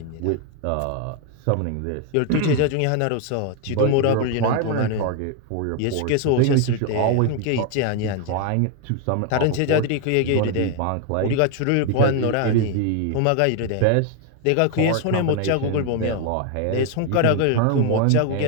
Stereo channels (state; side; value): different; both; correlation 0.01